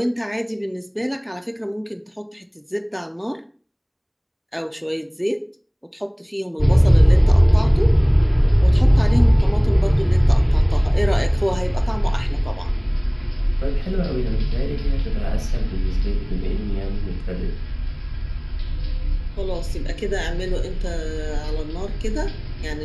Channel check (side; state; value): both; identical; correlation 1.00